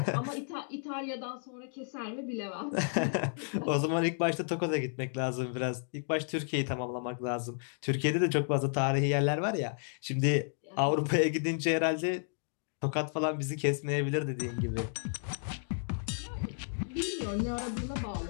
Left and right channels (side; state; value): right; silent; digital silence